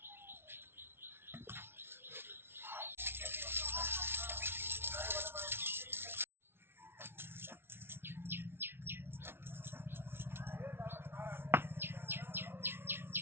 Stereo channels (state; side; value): late; left; 0.11 ms